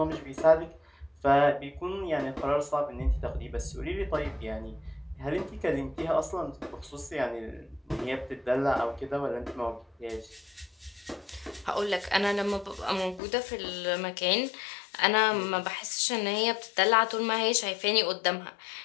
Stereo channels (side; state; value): right; drops out; at 13.2 s